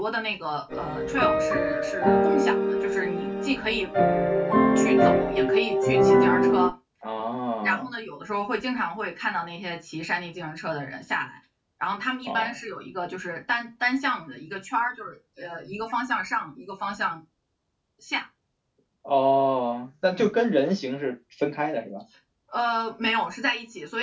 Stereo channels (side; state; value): both; identical; correlation 1.00